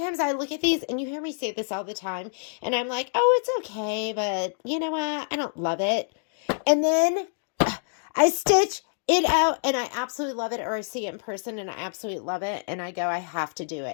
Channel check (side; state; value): right; silent; digital silence